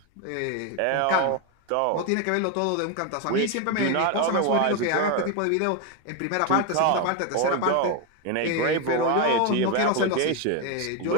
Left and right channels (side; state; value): both; different; correlation 0.01